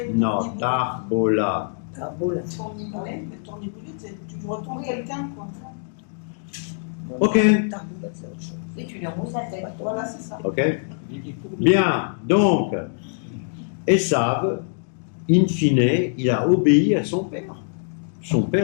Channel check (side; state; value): right; silent; digital silence